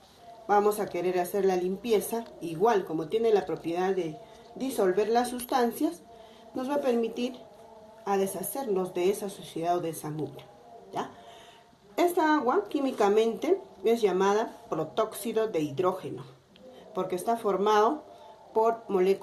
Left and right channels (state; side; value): identical; both; correlation 1.00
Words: vamos a querer hacer la limpieza, igual como tiene la propiedad de disolver las sustancias, nos va a permitir a deshacernos de esa suciedad o de esa mugre, ¿ya? Esta agua químicamente es llamada protóxido de hidrógeno, porque está formado por